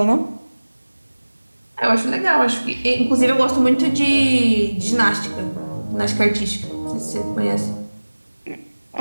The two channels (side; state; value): both; inverted; correlation -1.00